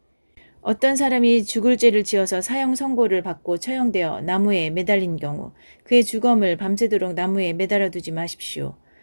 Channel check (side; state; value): both; inverted; correlation -1.00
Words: 어떤 사람이 죽을 죄를 지어서 사형 선고를 받고 처형되어 나무에 매달린 경우 그의 주검을 밤새도록 나무에 매달아 두지 마십시오.